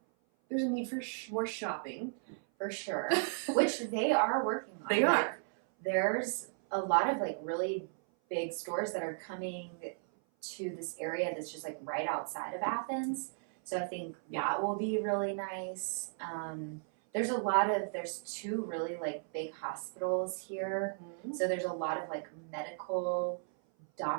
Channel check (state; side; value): silent; left; 54 dB below the other